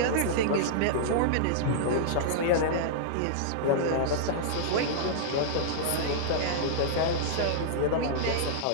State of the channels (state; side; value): different; both; correlation -0.02